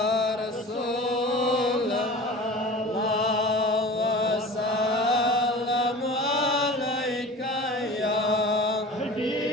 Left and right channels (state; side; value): normal; both; correlation 0.38